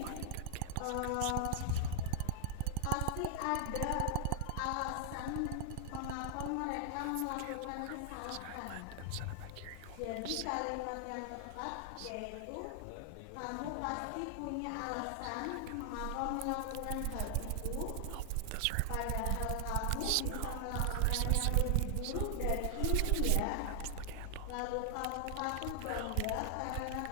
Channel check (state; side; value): different; both; correlation 0.00